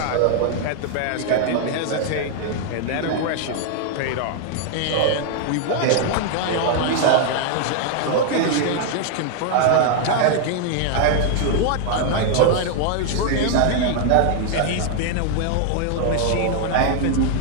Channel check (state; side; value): different; both; correlation 0.00